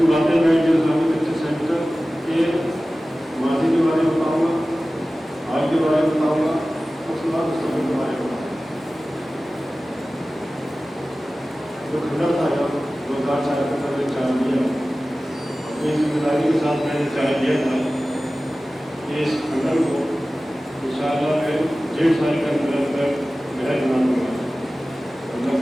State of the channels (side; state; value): both; normal; correlation 0.96